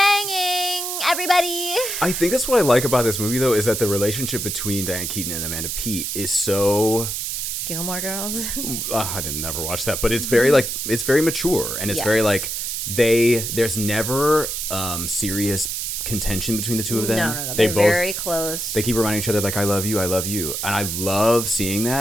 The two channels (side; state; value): right; noise; hiss, 3 dB below the sound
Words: everybody. I think that's what I like about this movie, though, is that the relationship between Diane Keaton and Amanda Peet is so... Gilmore Girls. I didn't never watch that, but it's very like it's very mature, and it's very like there's never serious contention between the two of them. No. They're both very close. They keep reminding each other like, I love you, and I love seeing